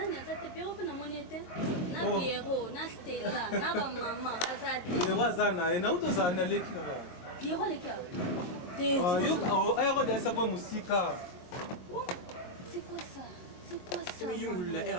aza te Pierrot mpe namoni ete? Na Pierrot, na Stella, na bamama baza te. Yero aza na ye na uto ozala na leki kaka. Pierrot aleki awa? Ayoko deasa kwa mosika. C'est quoi ça? C'est quoi ça? Tu me yungulula,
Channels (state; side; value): late; right; 22 ms